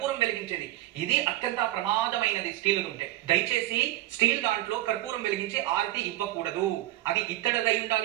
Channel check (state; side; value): quieter; left; 15.6 dB